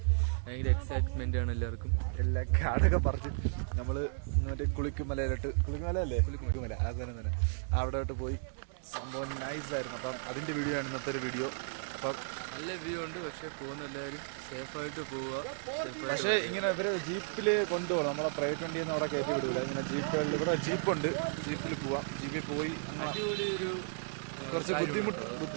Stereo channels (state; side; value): silent; left; digital silence